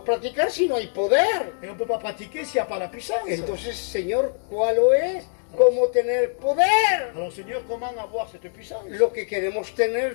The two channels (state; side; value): silent; right; 63 dB below the other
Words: practicar si no hay poder. Et on ne peut pas pratiquer s'il n'y a pas la puissance. Entonces, Señor, ¿cuál es? ¿Cómo tener poder? Alors Seigneur, comment avoir cette puissance? Lo que queremos